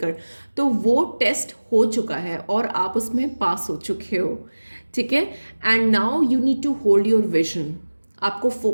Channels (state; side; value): inverted; both; correlation -1.00